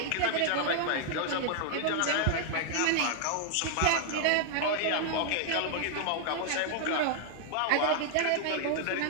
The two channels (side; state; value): both; different; correlation 0.00